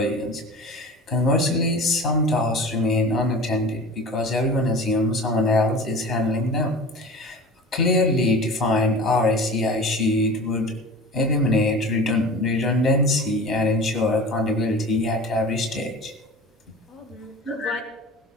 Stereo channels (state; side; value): normal; both; correlation 0.37